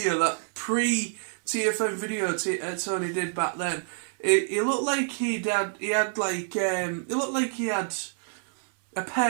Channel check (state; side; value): silent; left; 60 dB below the other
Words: that pre-TFN video Tony did back then. It looked like he had a